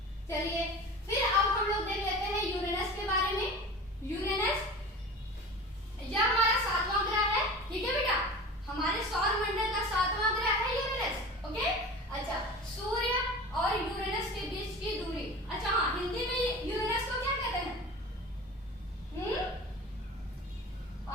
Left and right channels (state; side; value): normal; both; correlation 0.35